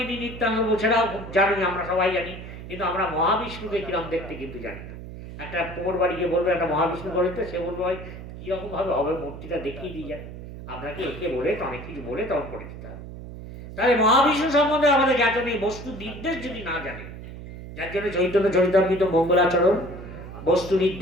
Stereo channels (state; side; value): noise; right; hum, 12 dB below the sound